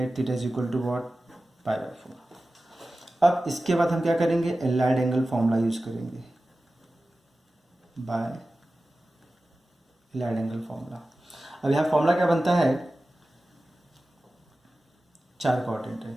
theta is equal to what? Pi by 4. अब इसके बाद हम क्या करेंगे, एलाइड एंगल फॉर्मूला यूज करेंगे, बाय एलाइड एंगल फॉर्मूला. अब यहाँ फॉर्मूला क्या बनता है, 4 क्वाड्रेंट है.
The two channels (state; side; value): normal; both; correlation 0.95